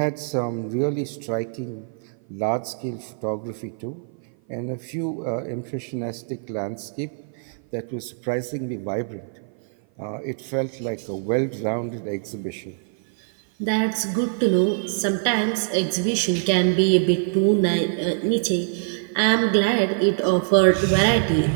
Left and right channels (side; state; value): left; silent; 56 dB below the other